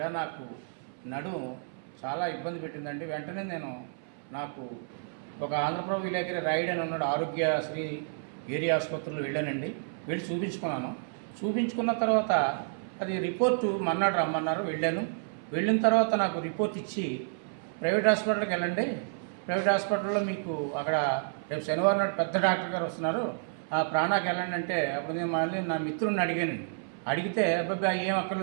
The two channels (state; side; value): silent; left; 58 dB below the other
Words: నాకు నడుము చాలా ఇబ్బంది పెట్టిందండి. వెంటనే నాకు ఒక ఆంధ్రప్రభ విలేకరి రైడ్ అని ఉన్నాడు, ఆరోగ్యశ్రీ ఏరియా ఆసుపత్రిలో వెళ్ళానండి. వెళ్ళి చూపించుకున్న తర్వాత అది రిపోర్టు మన్నాడు రమ్మన్నారు. వెళ్ళిన తర్వాత నాకు రిపోర్ట్ ఇచ్చి ప్రైవేట్ హాస్పిటల్కి వెళ్ళండి, ప్రైవేట్ హాస్పిటల్లో మీకు అక్కడ రేపు శనివారం నాడు పెద్ద డాక్టర్ గారు వస్తున్నారు, ఆ ప్రాణాకి వెళ్ళండి అంటే, అప్పుడు నేను మళ్ళీ నా మిత్రుడిని అడిగితే అబ్బాయి ఏం